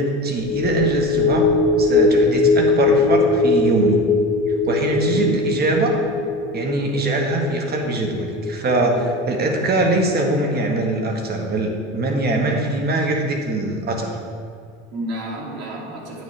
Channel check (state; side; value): normal; both; correlation 0.31